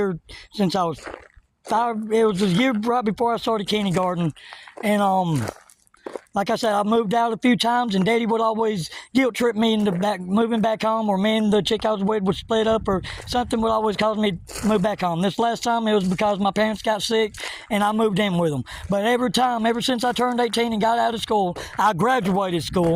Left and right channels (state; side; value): identical; both; correlation 1.00